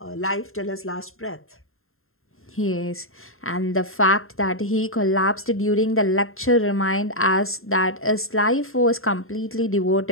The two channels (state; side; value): late; right; 0.61 ms